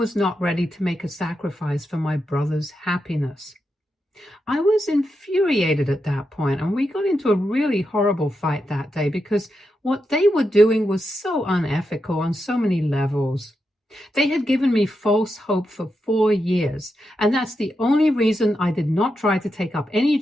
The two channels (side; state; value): both; normal; correlation 0.86